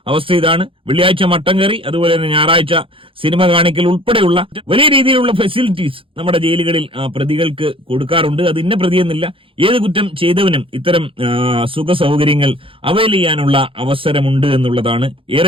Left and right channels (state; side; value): late; left; 0.26 ms